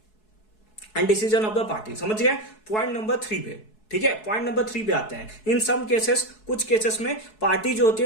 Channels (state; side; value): late; right; 4.7 ms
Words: And decision of the party, समझ गए। पॉइंट नंबर 3 पे, ठीक है, पॉइंट नंबर 3 पे आते हैं। इन सम केसेस, कुछ केसेस में पार्टी जो होती